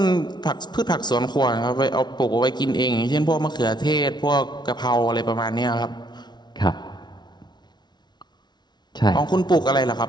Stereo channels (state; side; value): late; right; 0.20 ms